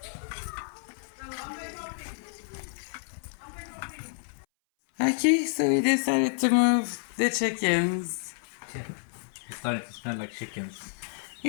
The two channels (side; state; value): right; silent; 58 dB below the other